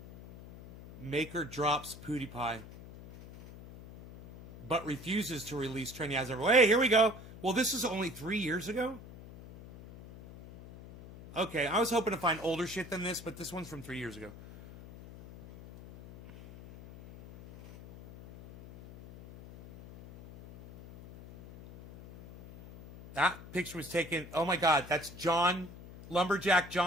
Maker drops PewDiePie, but refuses to release Trendy as ever. Hey, here we go. Well, this is only 3 years ago? Okay, I was hoping to find older shit than this, but this one's from 3 years ago. That picture was taken, oh my God, that's John, Lumberjack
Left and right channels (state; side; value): noise; left; hum, 16 dB below the sound